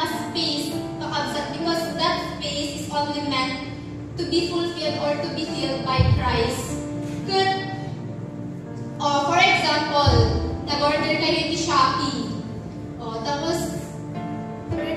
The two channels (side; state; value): both; identical; correlation 1.00